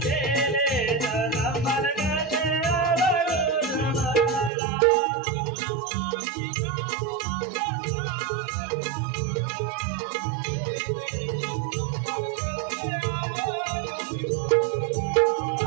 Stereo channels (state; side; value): drops out; left; at 4.5 s